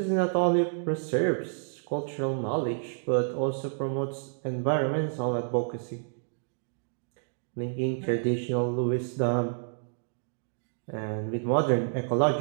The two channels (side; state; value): left; silent; digital silence